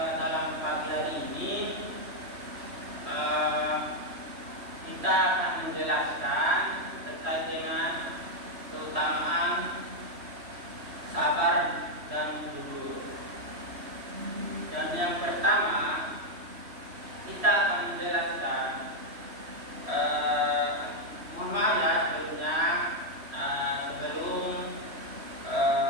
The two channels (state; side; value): late; left; 3.1 ms